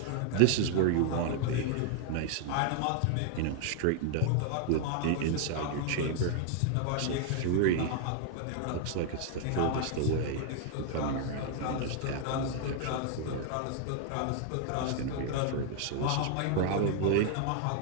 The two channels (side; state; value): both; different; correlation 0.00